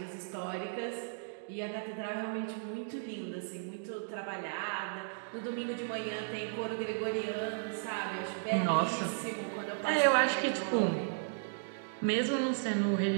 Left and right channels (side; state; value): left; silent; digital silence